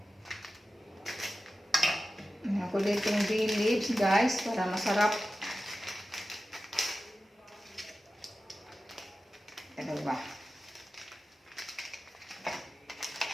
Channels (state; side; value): normal; both; correlation 0.94